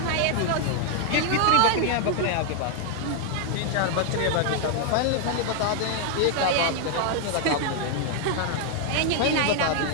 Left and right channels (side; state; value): both; different; correlation 0.00